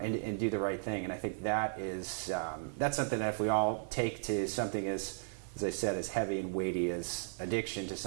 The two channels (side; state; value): left; silent; digital silence